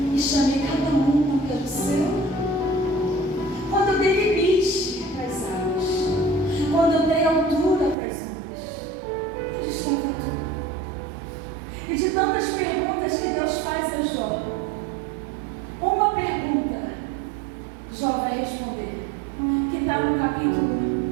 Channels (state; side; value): drops out; left; at 8.0 s